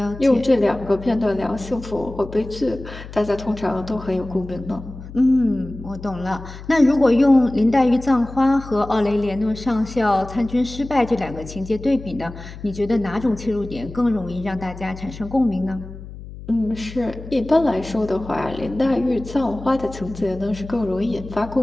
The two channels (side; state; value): left; noise; hum, 14 dB below the sound